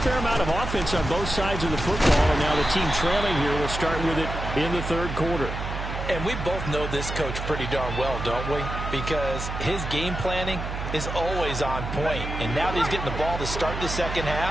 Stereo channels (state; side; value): noise; right; hum, 5 dB below the sound